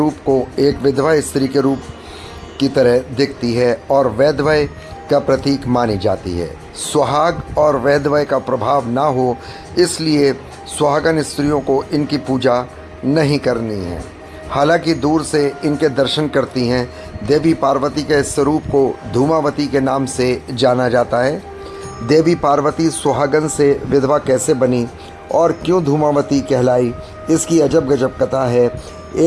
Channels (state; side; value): identical; both; correlation 1.00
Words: को एक विधवा स्त्री के रूप की तरह दिखती है और वैधव्य का प्रतीक मानी जाती है। सुहाग और वैधव्य का प्रभाव ना हो, इसलिए सुहागन स्त्रियों को इनकी पूजा नहीं करनी है। हालांकि दूर से इनके दर्शन करती हैं। देवी पार्वती के इस स्वरूप को धूमावती के नाम से जाना जाता है। देवी पार्वती सुहागन से विधवा कैसे बनी और क्यों धूमावती कहलाई, इसकी अजब गजब कथा है।